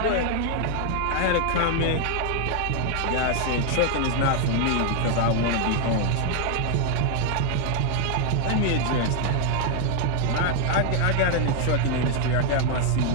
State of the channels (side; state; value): both; different; correlation 0.00